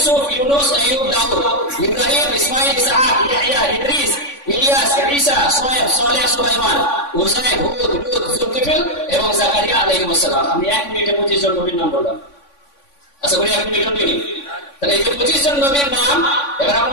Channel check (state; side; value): late; right; 3.5 ms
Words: ইউনুস, আইয়ুব, দাউদ, ইব্রাহিম, ইসমাঈল, ইসহাক, ইয়াহইয়া, ইদ্রিস, ইলিয়াস, ঈসা, সোয়েব, সালেহ, সুলাইমান, উযাইর, হুদ, লূত, যুলকিফল এবং জাকারিয়া আলাইহিস সালাম। আমি 1 মিনিটে 25 জন নবীর নাম বললাম। আচ্ছা করি 1 মিনিট নিই। তাহলে এই যে 25 জন নবীর নাম, এবার